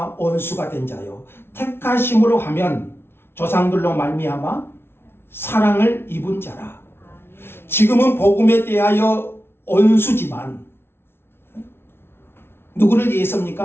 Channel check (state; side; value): late; right; 0.12 ms